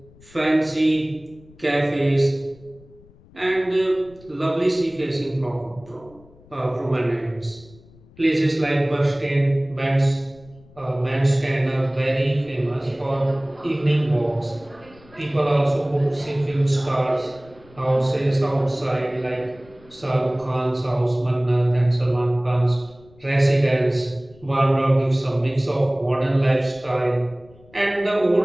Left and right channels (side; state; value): left; noise; rumble, 25 dB below the sound